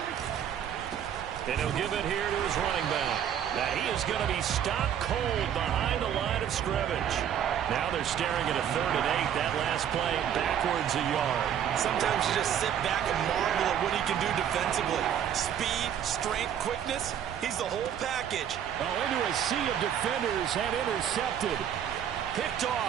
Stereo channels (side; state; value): left; quieter; 9.4 dB